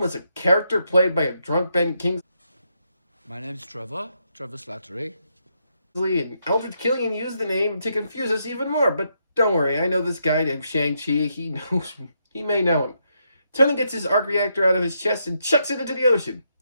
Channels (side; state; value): both; inverted; correlation -0.79